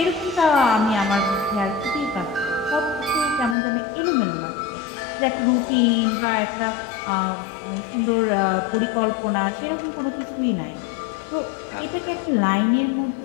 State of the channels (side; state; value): right; drops out; at 3.6 s